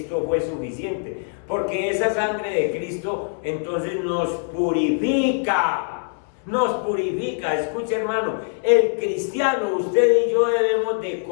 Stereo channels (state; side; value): silent; right; digital silence